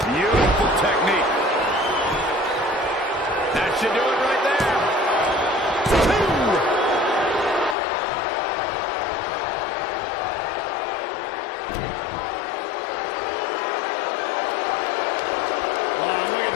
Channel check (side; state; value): right; drops out; at 7.8 s